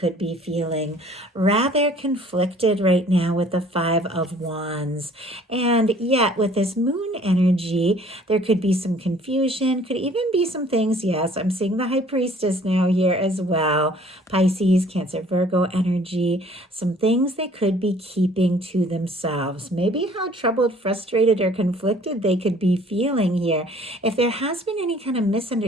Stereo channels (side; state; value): both; normal; correlation 0.54